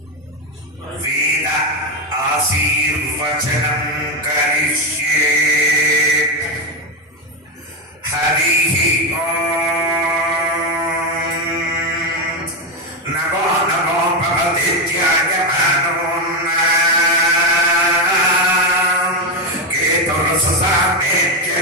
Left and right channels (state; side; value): normal; both; correlation 0.10